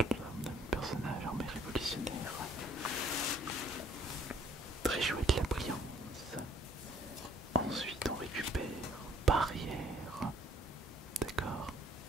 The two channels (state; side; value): normal; both; correlation 0.61